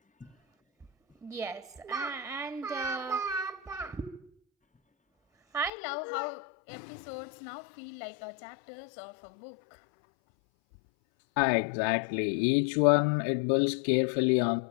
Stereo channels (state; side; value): drops out; right; at 5.7 s